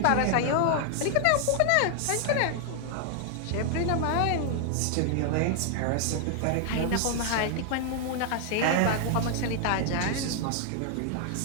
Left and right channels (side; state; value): both; different; correlation 0.00